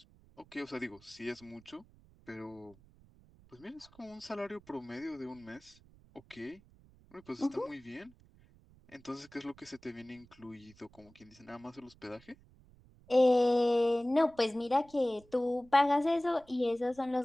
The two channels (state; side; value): noise; right; rumble, 26 dB below the sound